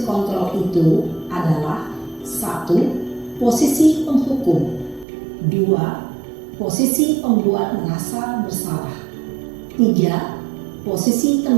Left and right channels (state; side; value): drops out; left; at 5.1 s